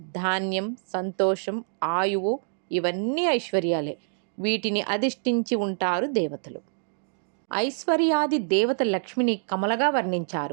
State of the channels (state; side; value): silent; left; digital silence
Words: ధాన్యం, సంతోషం, ఆయువు ఇవన్నీ ఐశ్వర్యాలే. వీటిని అధిష్ఠించి ఉంటారు దేవతలు. ఐశ్వర్యాది దేవత లక్ష్మిని కమలగా